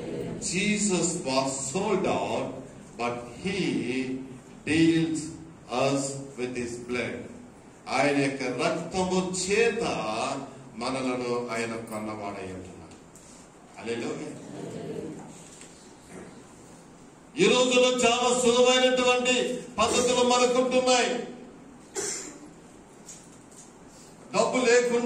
Jesus was sold out, but he deals us with his blood. ఆయన యొక్క రక్తము చేత మనలను ఆయన కొన్నవాడై ఉంటున్నాడు. హల్లెలూయా. ఈ రోజుల్లో చాలా సులభమైనటువంటి పద్ధతులు మనకుంటున్నాయి. డబ్బు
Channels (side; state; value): both; identical; correlation 1.00